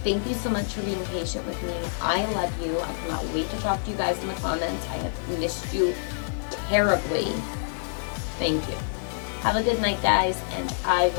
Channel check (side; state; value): right; silent; digital silence